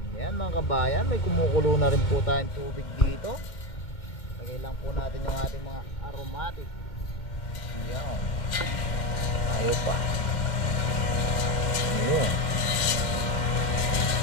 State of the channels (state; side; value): late; right; 2.1 ms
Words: Yan mga kabayan, may kumukulo na rin po tayong tubig dito. Lagay lang po natin yung ating mga aromatic. Yan, ayaw pa. Ayun.